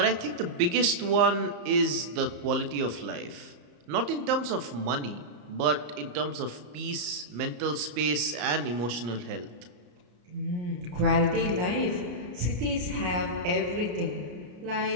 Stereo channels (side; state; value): left; late; 34 ms